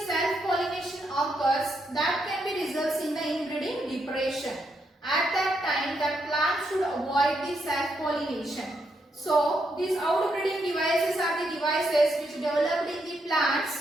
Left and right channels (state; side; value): normal; both; correlation 0.79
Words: self-pollination occurs, that can be results in the inbreeding depression. At that time, that plant should avoid the self-pollination. So, these outbreeding devices are the devices which developed in the